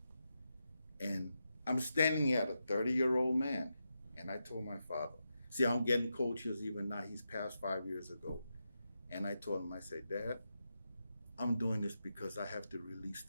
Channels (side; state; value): both; inverted; correlation -0.87